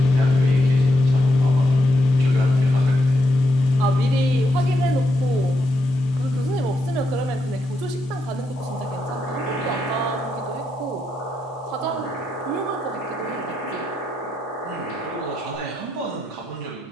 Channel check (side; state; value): both; normal; correlation 0.82